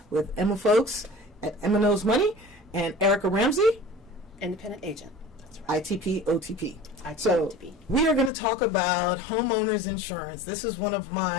with Emma Folks at Emma Knows Money and Erica Ramsey, independent agent. That's right. ITP OTP. So we are going to talk about homeowners insurance. This is one of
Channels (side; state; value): right; drops out; at 8.3 s